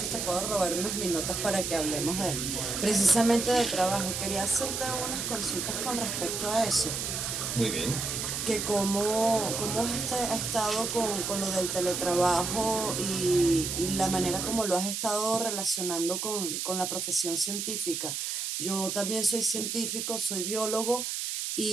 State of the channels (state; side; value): noise; right; hiss, 3 dB below the sound